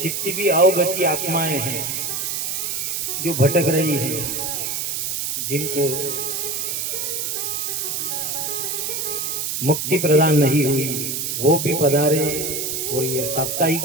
जितनी भी अवगति आत्माएं हैं जो भटक रही हैं, जिनको मुक्ति प्रदान नहीं हुई, वो भी पधारे और ये साप्ताहिक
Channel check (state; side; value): noise; right; hiss, 2 dB below the sound